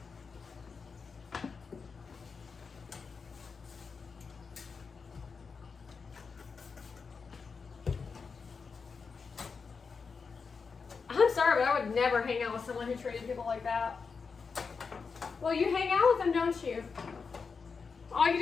I'm sorry, but I would never hang out with someone who treated people like that. Well, you hang out with them, don't you? All you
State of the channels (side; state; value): right; quieter; 5.2 dB